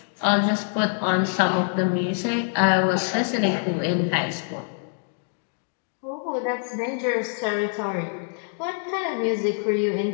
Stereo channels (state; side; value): silent; right; digital silence